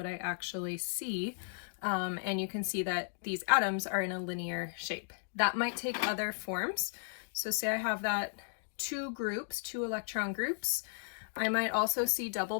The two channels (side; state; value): right; silent; digital silence